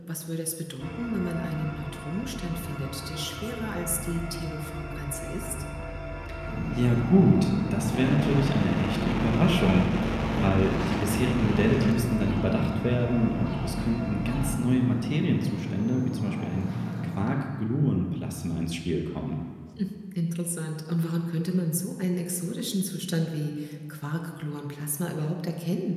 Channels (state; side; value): identical; both; correlation 1.00